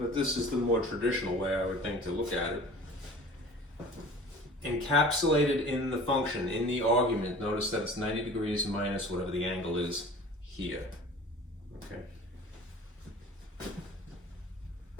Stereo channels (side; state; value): both; normal; correlation 0.43